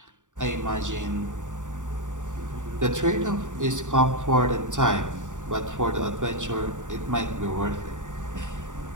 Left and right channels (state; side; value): late; left; 0.86 ms